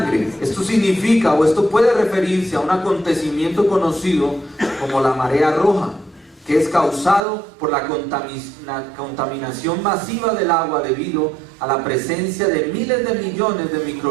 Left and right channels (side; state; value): left; drops out; at 7.2 s